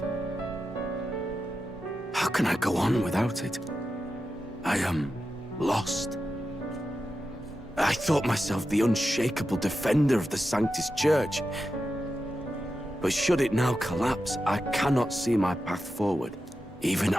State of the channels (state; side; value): normal; both; correlation 0.90